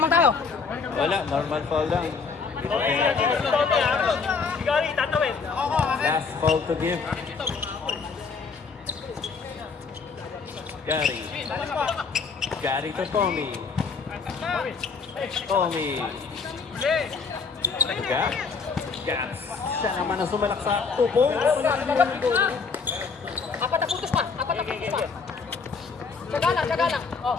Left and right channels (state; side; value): quieter; right; 5.0 dB